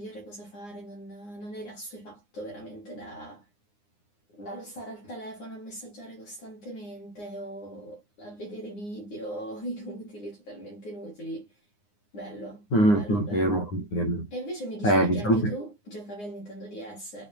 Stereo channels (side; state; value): right; late; 9.7 ms